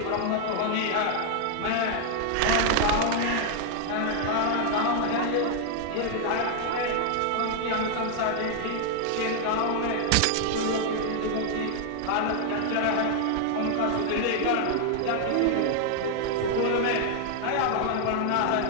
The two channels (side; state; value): both; different; correlation 0.00